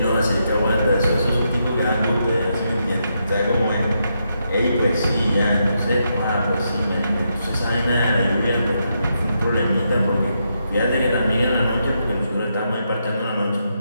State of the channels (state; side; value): inverted; both; correlation -0.81